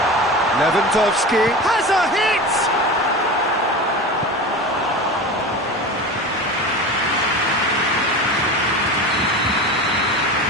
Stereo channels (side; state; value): both; normal; correlation 0.29